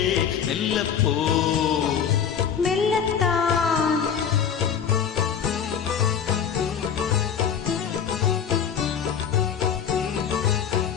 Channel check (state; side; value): quieter; right; 7.9 dB